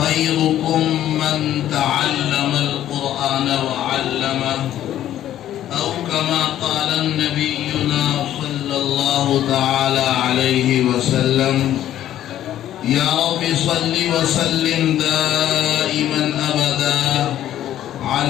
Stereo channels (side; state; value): right; quieter; 12.1 dB